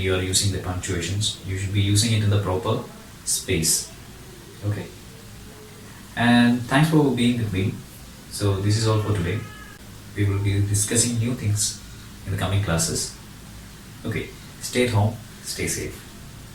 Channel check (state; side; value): identical; both; correlation 1.00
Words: are using the punctuations. You should be using it in the proper space. Okay. And thanks for being with me. So this is all for today. We will be discussing new things in the coming classes. Okay. Stay at home. Stay safe.